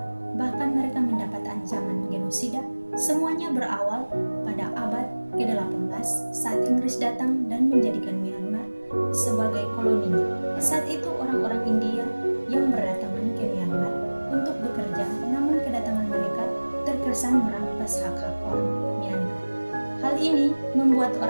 bahkan mereka mendapat ancaman genosida. Semuanya berawal pada abad ke-18 saat Inggris datang dan menjadikan Myanmar sebagai koloninya. Saat itu orang-orang India yang berdatangan ke Myanmar untuk bekerja, namun kedatangan mereka terkesan merampas hak-hak orang Myanmar. Hal ini membuat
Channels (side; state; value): both; inverted; correlation -1.00